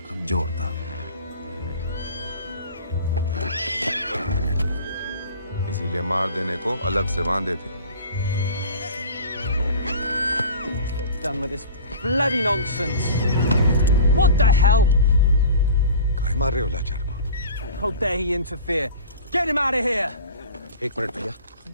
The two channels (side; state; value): both; inverted; correlation -0.40